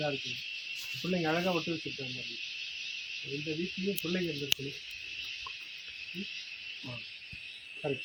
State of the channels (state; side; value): identical; both; correlation 1.00